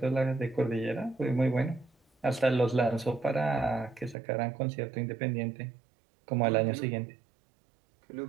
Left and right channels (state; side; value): drops out; left; at 4.2 s